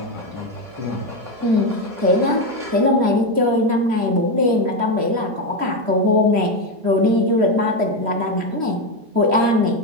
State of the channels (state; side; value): late; left; 4.9 ms